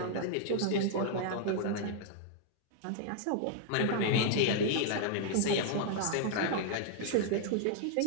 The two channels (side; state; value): both; different; correlation 0.00